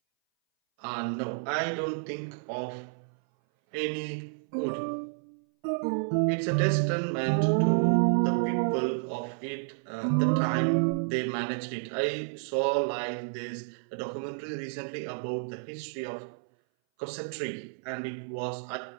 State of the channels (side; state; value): left; silent; 58 dB below the other